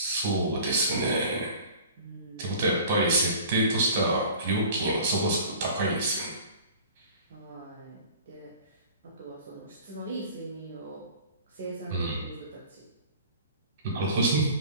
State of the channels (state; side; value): inverted; both; correlation -0.44